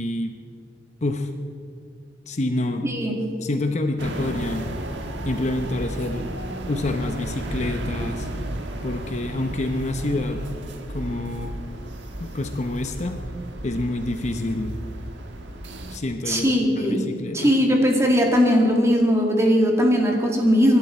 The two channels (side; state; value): both; normal; correlation 0.76